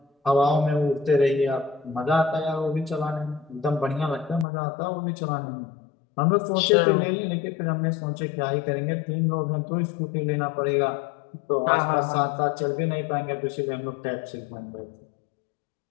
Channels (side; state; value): right; drops out; at 4.5 s